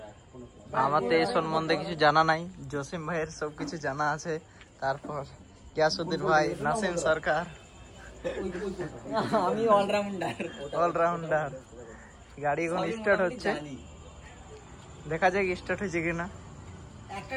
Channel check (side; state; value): both; identical; correlation 1.00